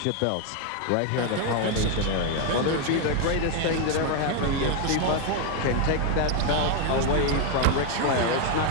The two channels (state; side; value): different; both; correlation 0.01